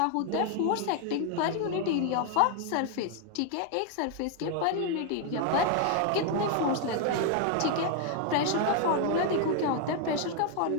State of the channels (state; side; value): different; both; correlation 0.00